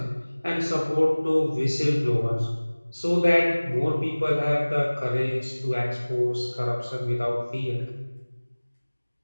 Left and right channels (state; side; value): inverted; both; correlation -1.00